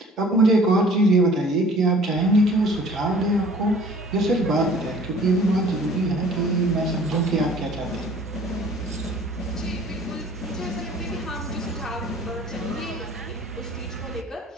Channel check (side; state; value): both; normal; correlation 0.51